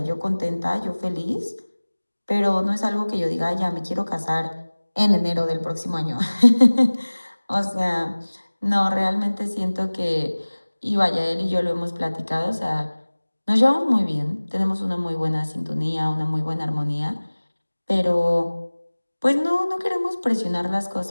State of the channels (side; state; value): both; inverted; correlation -1.00